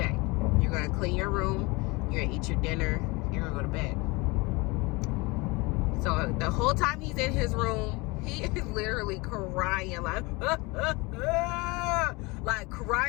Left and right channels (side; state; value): right; quieter; 25.4 dB